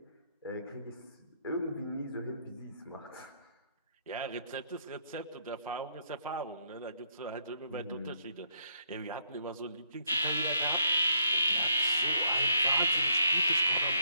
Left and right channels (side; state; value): both; inverted; correlation -0.73